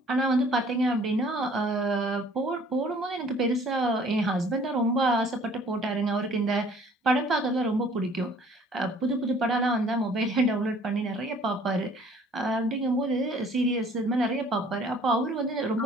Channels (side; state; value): both; normal; correlation 0.54